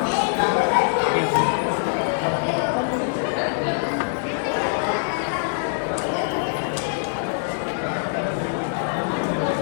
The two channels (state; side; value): silent; right; digital silence